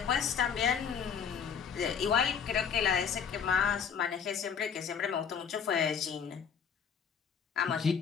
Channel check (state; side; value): quieter; right; 7.1 dB